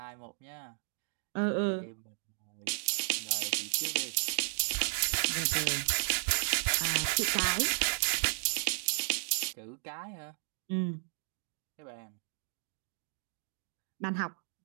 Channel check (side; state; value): left; silent; digital silence